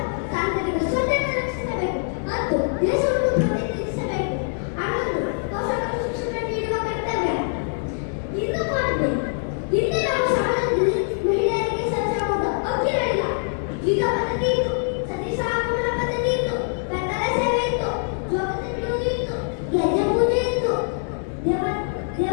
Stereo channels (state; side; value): silent; right; digital silence